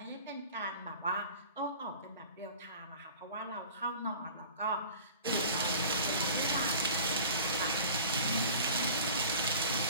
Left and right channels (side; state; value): both; inverted; correlation -0.42